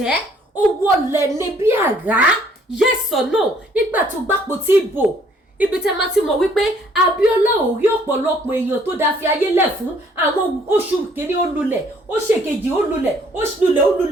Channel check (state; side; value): normal; both; correlation 0.62